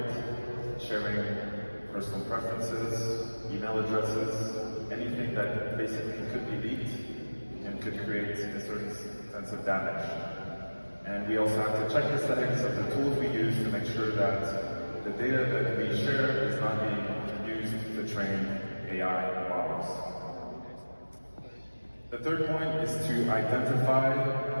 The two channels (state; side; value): inverted; both; correlation -1.00